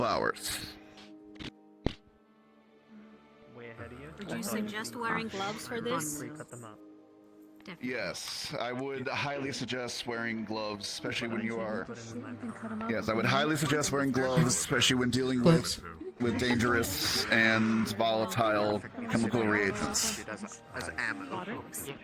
hours. Would you suggest wearing gloves for this? Yes, I would highly suggest wearing gloves, especially when you are... Yes, I would highly suggest wearing gloves, especially when dealing with dangerous and volatile chemical reagents.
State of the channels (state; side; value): identical; both; correlation 1.00